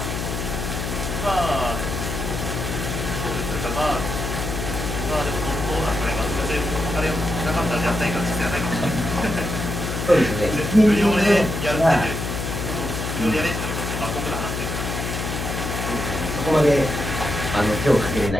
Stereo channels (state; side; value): noise; left; hum, 4 dB below the sound